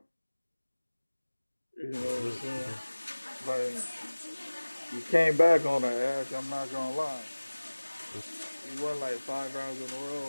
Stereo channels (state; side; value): inverted; both; correlation -1.00